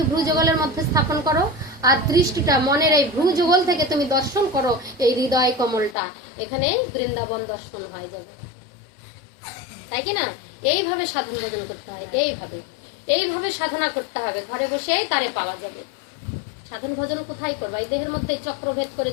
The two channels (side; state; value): right; drops out; at 6.0 s